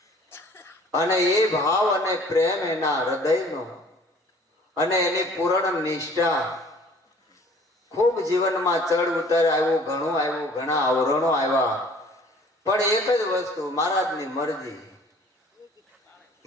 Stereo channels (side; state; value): both; normal; correlation 0.52